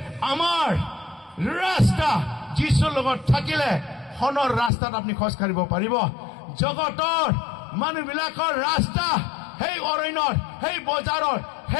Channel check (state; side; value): drops out; right; at 4.7 s